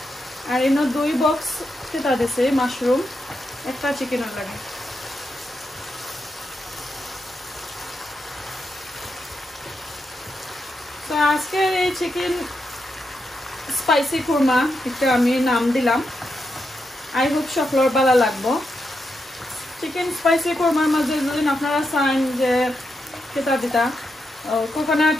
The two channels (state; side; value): normal; both; correlation 0.84